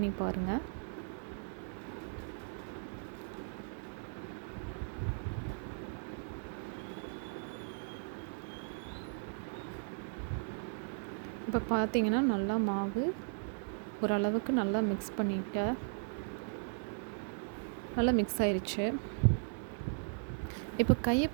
பாருங்கள். இப்போ பார்த்தீங்கன்னா நல்லா மாவு ஓரளவுக்கு நல்லா மிக்ஸ் பண்ணிவிட்டேன். நல்லா மிக்ஸ் ஆயிடுச்சு. இப்போ கையை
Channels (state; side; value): silent; left; 53 dB below the other